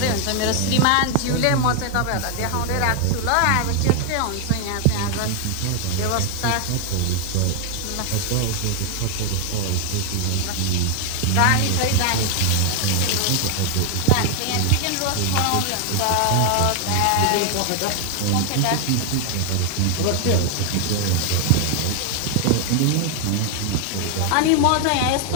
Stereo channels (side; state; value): both; different; correlation 0.00